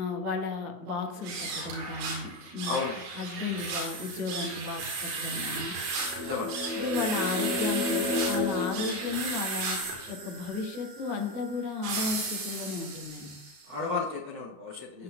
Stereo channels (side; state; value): left; late; 33 ms